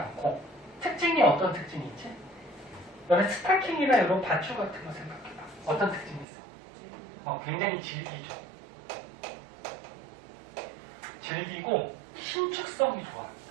특징이 어떤 특징이 있지? 너네 스타킹이나 이런 밧줄 같은 거 생각해봐. 어떤 특징이 있어? 굉장히 질기죠. 질기고 신축성이 좋아.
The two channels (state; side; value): drops out; left; at 6.2 s